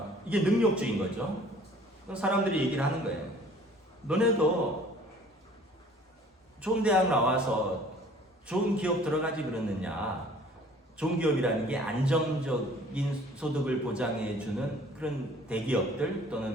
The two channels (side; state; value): both; normal; correlation 0.52